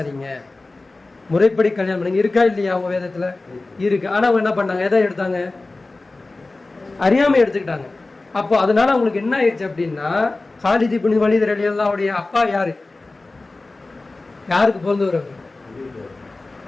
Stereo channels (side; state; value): right; quieter; 3.2 dB